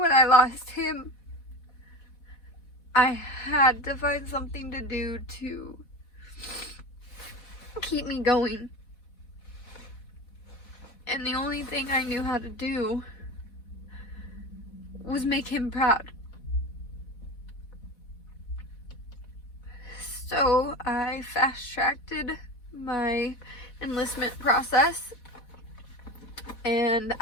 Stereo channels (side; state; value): right; late; 4.1 ms